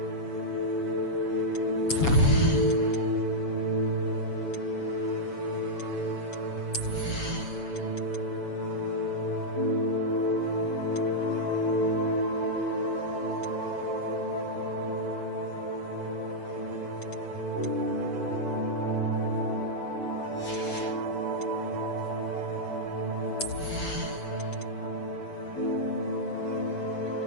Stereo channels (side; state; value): right; late; 7.1 ms